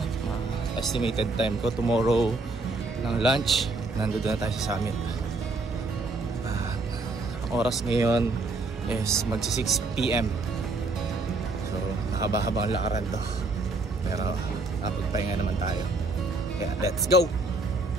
estimated time ko, tomorrow ng lunch, nandun na tayo sa summit. Ang oras ngayon is magsi 6 PM. So, nakabahaba ang lakaran to. Pero, napagpahinga naman tayo. Kaya, let's go!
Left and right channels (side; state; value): left; quieter; 3.3 dB